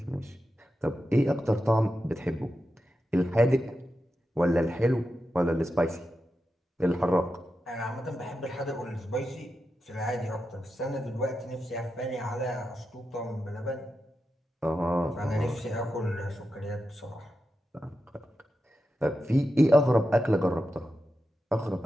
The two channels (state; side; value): normal; both; correlation 0.89